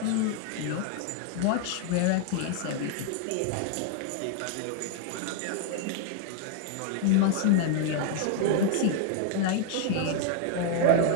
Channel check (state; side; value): different; both; correlation 0.00